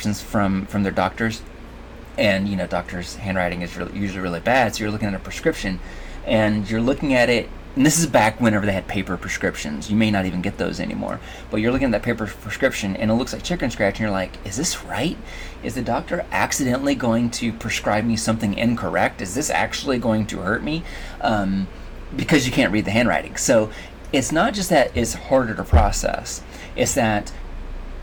from their doctors, and, doctors' handwriting is usually really bad. So you're looking at a prescription and you're looking at it, and this is back whenever they had paper prescriptions. You may not even get those anymore, but you're looking at that paper prescription and it looks like chicken scratch, and you're like, is this right? Is the doctor accidentally going to prescribe me something incorrect? Is this actually going to hurt me? Because you can't read the handwriting. So it's not just that it's harder to process, it's that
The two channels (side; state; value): both; identical; correlation 1.00